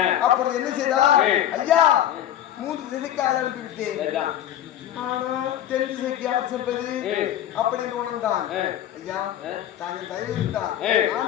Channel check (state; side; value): quieter; right; 11.5 dB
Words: அப்பொழுது என்ன செய்தார்? ஐயா 3 திசைக்கு ஆள் அனுப்பி விட்டேன். ஆனா தென் திசைக்கு யார் செல்வது அப்படின்னு உணர்ந்தான். ஐயா தாங்கள் தயவு இருந்தார்